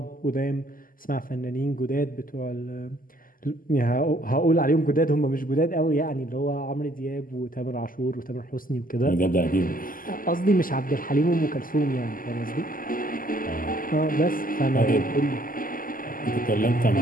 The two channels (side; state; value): right; late; 0.41 ms